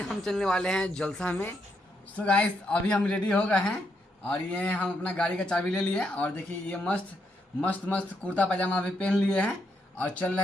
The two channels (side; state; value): both; normal; correlation 0.79